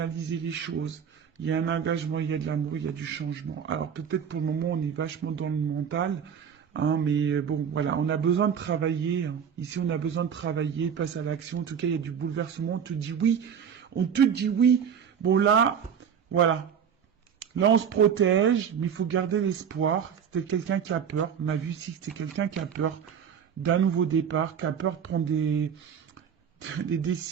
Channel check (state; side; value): quieter; left; 7.7 dB